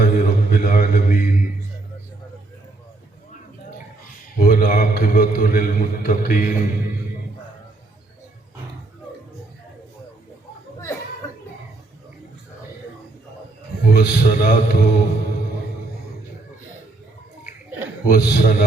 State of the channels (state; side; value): quieter; left; 3.1 dB